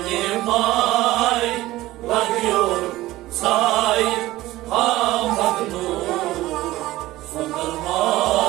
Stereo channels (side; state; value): left; quieter; 16.9 dB